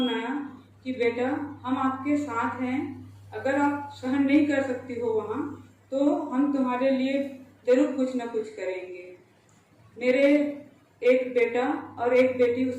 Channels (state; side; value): identical; both; correlation 1.00